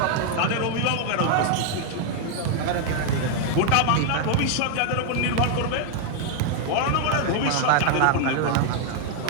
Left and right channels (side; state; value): both; different; correlation 0.00